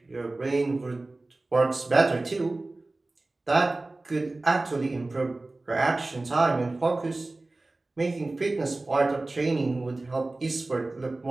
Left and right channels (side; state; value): left; quieter; 3.0 dB